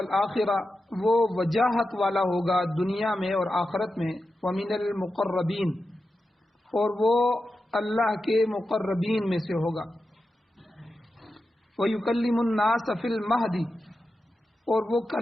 وہ وجاہت والا ہوگا دنیا میں اور آخرت میں ومن المقربین اور وہ اللہ کے مقربین میں سے ہوگا ویکلم الناس فی المہدی اور وہ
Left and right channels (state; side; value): normal; both; correlation 0.90